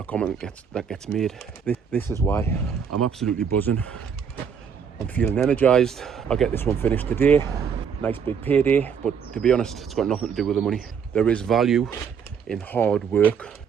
comment that gets made. This is why I'm absolutely buzzing. I'm feeling energized. I'll get this one finished today. Nice big payday, but to be honest, it's got nothing to do with the money. There is value in hard work,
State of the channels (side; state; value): left; quieter; 6.9 dB